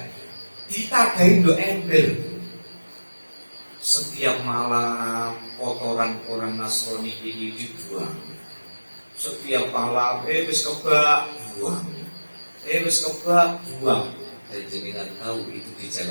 Ditadahi ndo ember. Setiap malam kotoran orang Nasrani ini dibuang. Setiap malam wis kebak buang. Wis kebak buang. Dan jenengan tahu itu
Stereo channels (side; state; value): both; inverted; correlation -1.00